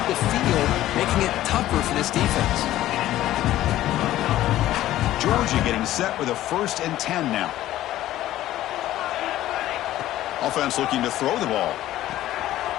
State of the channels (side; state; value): right; quieter; 14.2 dB